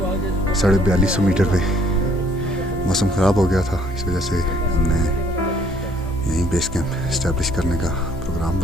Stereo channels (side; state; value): both; normal; correlation 0.62